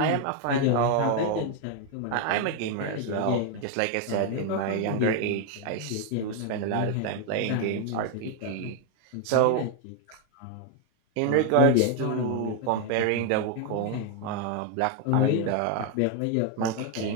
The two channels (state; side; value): different; both; correlation 0.01